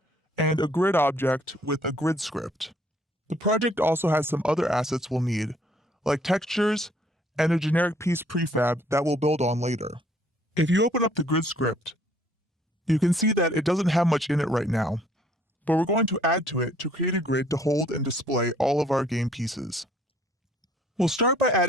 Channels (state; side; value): normal; both; correlation 0.62